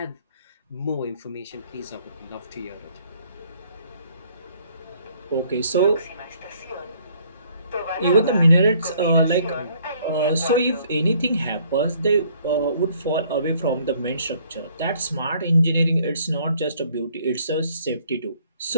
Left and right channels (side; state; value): both; inverted; correlation -0.62